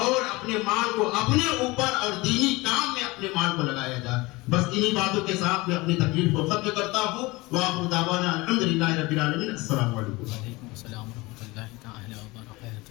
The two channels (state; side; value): quieter; right; 22.4 dB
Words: अपने माल को अपने ऊपर और दीनी काम में अपने माल को लगाया जाए। बस इन्हीं बातों के साथ मैं अपनी तकरीर को खत्म करता हूँ। वाक़िअ दावाना अल्हम्दुलिल्लाहि रब्बिल आलमीन। अस्सलामु अलैकुम। वालेकुम अस्सलाम व रहमतुल्लाहि तआला व